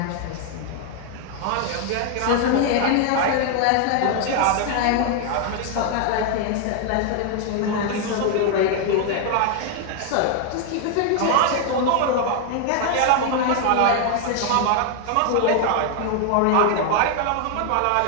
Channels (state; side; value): different; both; correlation 0.00